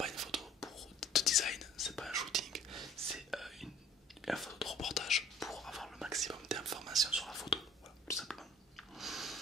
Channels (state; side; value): normal; both; correlation 0.54